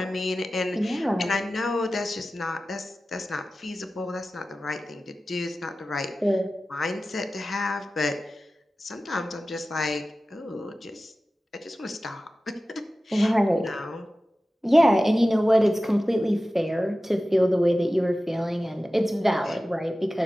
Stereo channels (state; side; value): normal; both; correlation 0.95